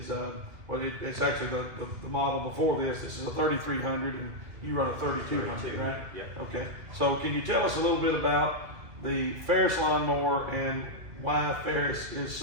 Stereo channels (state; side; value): late; left; 2.7 ms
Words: it's actually the model before this. This is a 3300, and you run a 3200, right? Yep. Okay. So, can you tell us a little bit about the Ferris lawnmower and why Ferris is